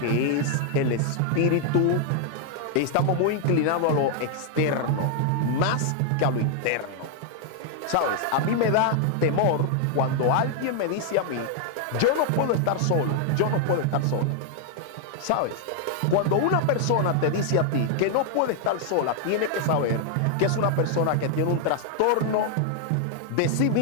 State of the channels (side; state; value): both; different; correlation 0.00